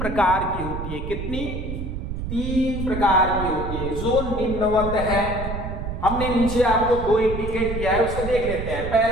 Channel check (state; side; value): noise; right; rumble, 5 dB below the sound